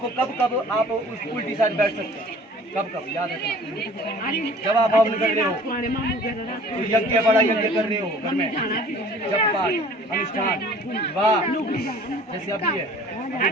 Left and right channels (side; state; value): both; normal; correlation 0.49